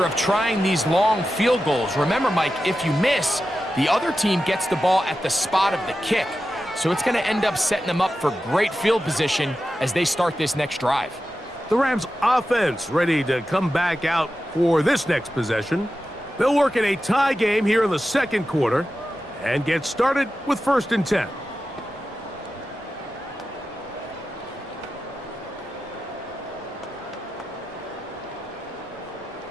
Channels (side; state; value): both; normal; correlation 0.92